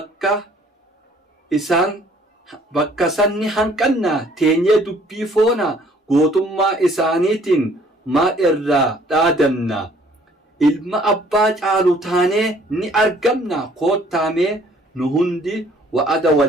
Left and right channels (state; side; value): normal; both; correlation 0.59